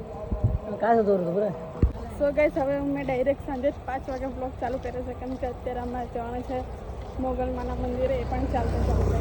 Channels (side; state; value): both; identical; correlation 1.00